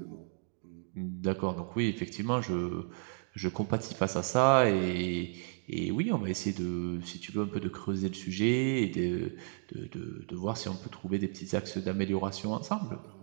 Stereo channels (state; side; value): silent; left; 56 dB below the other